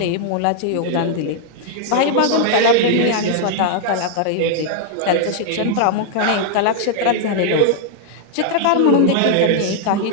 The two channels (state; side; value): different; both; correlation -0.01